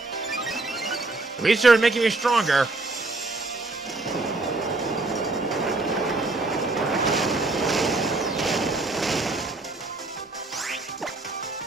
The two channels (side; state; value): left; quieter; 3.2 dB